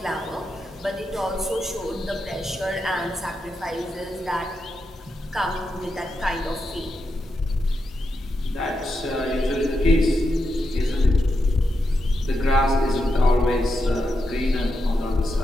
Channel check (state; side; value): normal; both; correlation 0.86